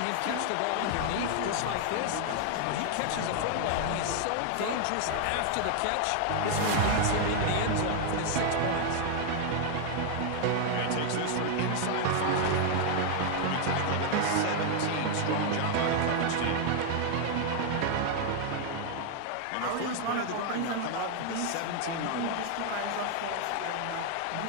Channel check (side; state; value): both; different; correlation 0.00